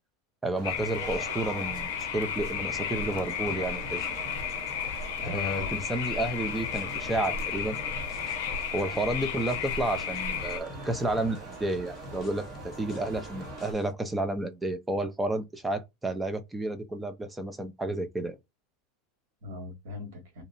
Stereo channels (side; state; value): both; normal; correlation 0.47